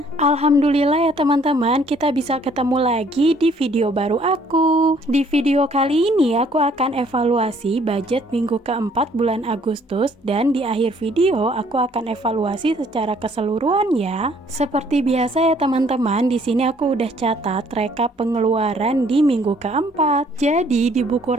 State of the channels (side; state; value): both; normal; correlation 0.62